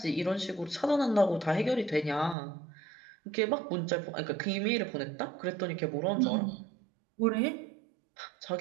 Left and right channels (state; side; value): drops out; left; at 2.4 s